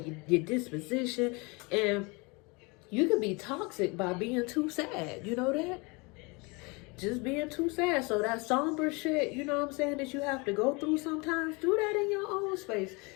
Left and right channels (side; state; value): right; quieter; 28.1 dB